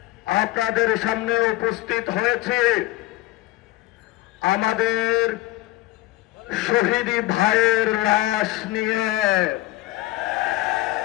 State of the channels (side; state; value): right; quieter; 17.2 dB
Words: আপনাদের সামনে উপস্থিত হয়েছি আমাদের শহীদি ভাইয়ের লাশ নিয়ে।